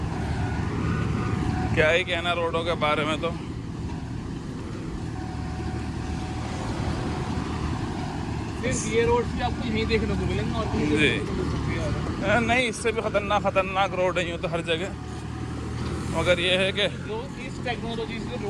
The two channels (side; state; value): both; identical; correlation 1.00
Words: क्या ही कहना रोडों के बारे में। तो सिर्फ ये रोड भी आपको यहीं देखने को मिलेंगे और कहीं जी। देखने को मिल सकती है। नहीं, इससे भी खतरनाक रोड है यूँ तो हर जगह, मगर ये है कि जो इस टेक्नोलॉजी से